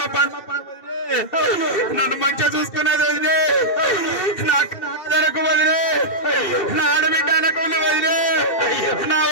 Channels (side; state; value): right; late; 2.7 ms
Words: పండుగ నన్ను మంచిగా చూసుకున్నది వదిలే నాకు నాదరకు వదిలే నా ఆడబిడ్డ అనకులు వదిలే నా